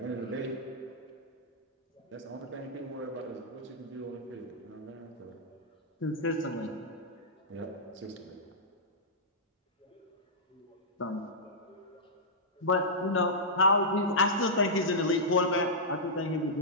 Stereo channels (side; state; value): both; normal; correlation -0.12